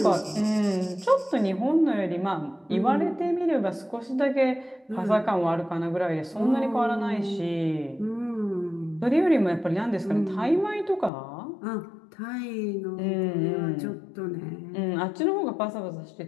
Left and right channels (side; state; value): right; drops out; at 11.1 s